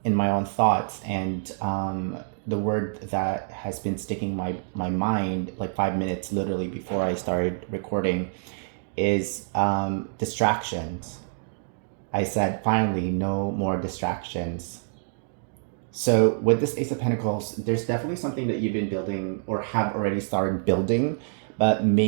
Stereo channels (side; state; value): left; silent; digital silence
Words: in my own thoughts, and the word that has been sticking my mind like 5 minutes literally before I started recording is distractions. I said finally no more distractions. So with this Ace of Pentacles, there's definitely something that you've been building or have already started building, but